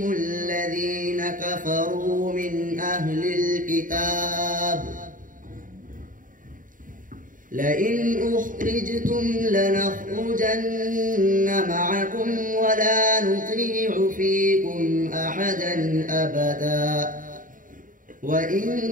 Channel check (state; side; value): late; left; 0.39 ms